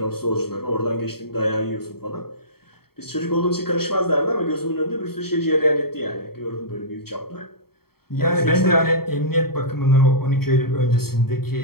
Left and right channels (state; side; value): late; right; 0.95 ms